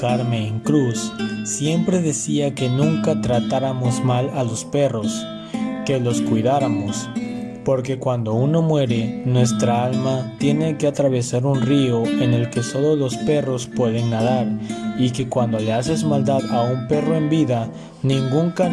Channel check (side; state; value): both; identical; correlation 1.00